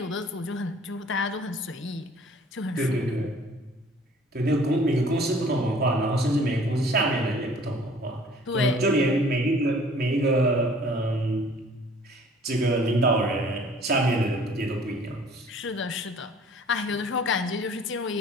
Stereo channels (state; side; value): normal; both; correlation 0.52